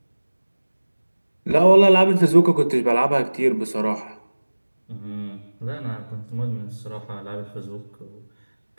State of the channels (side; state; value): both; inverted; correlation -1.00